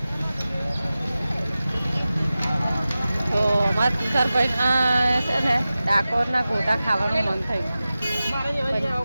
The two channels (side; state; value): both; inverted; correlation -0.95